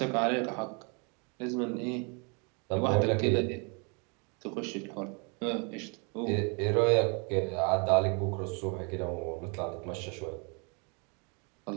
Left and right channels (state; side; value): quieter; left; 34.1 dB